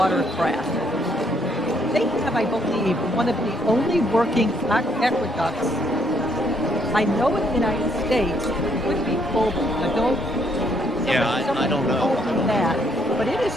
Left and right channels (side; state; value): both; normal; correlation 0.70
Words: They have, I believe, one of the only working aqueducts I know in the United States. It would be global. I don't. Yeah, I don't know. I don't know. That, but it is